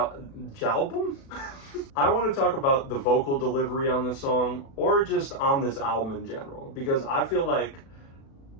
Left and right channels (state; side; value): late; right; 36 ms